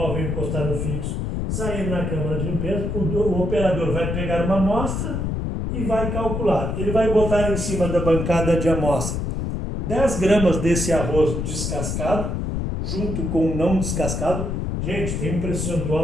encostar no fixo, sair na câmara de limpeza, o operador vai pegar uma amostra e vai calcular. Ele vai botar em cima da bancada de amostra 10 gramas desse arroz descascado, junto com o não descascado. Gente, tem um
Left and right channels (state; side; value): noise; left; rumble, 2 dB below the sound